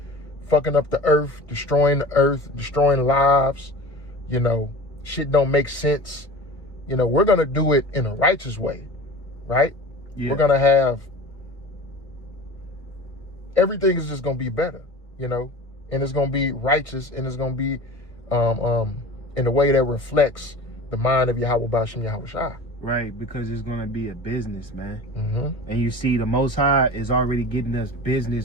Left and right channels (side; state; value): right; late; 1.6 ms